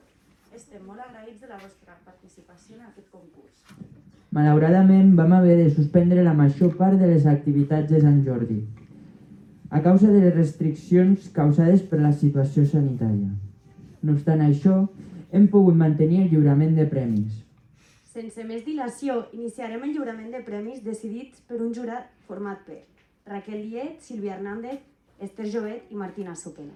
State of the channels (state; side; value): identical; both; correlation 1.00